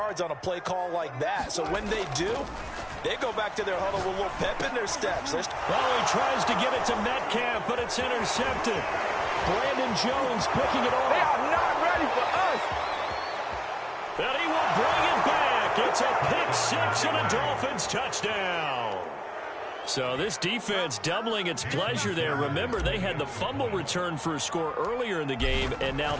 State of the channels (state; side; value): identical; both; correlation 1.00